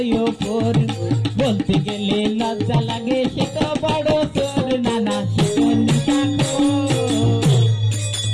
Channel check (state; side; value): identical; both; correlation 1.00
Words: ওপর, বলতে গেলে লজ্জা লাগে সে তো বড় তোর। নানা সে তো নিশা